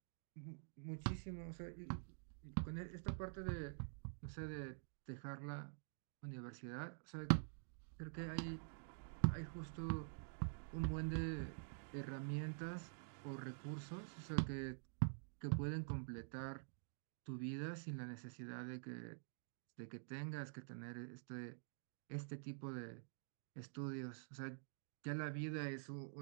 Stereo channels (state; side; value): silent; left; digital silence